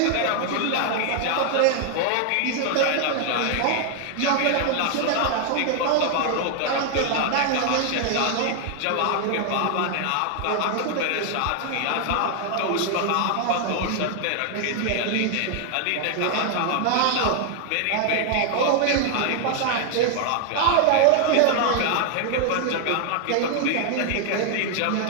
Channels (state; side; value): different; both; correlation 0.00